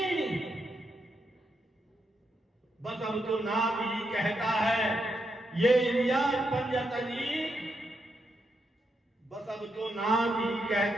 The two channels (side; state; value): both; normal; correlation 0.82